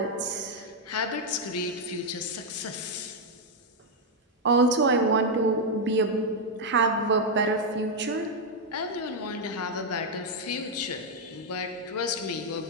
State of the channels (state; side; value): normal; both; correlation -0.01